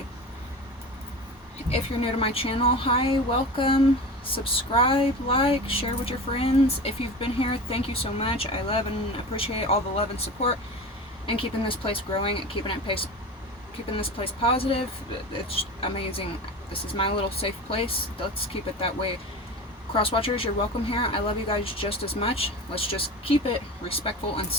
If you're new to my channel, hi, welcome. Subscribe, like, share with your friends. If you've been here, thank you so much. I love and appreciate all the love and support and keeping this place growing and keeping this place positive. It's amazing. This is my little safe place. Let's keep it that way. Crosswatchers, you're welcome here. I love you guys just as much. Let's just keep it respectful and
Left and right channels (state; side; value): normal; both; correlation 0.31